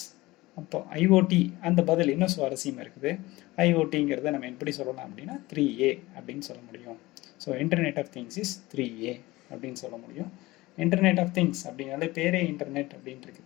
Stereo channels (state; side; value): quieter; right; 19.7 dB